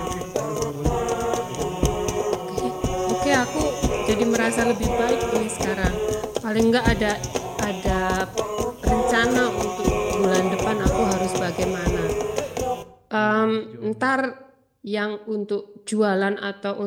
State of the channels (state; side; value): identical; both; correlation 1.00